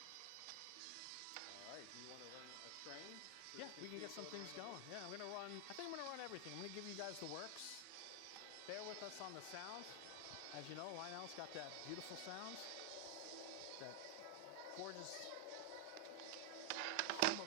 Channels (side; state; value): both; different; correlation 0.00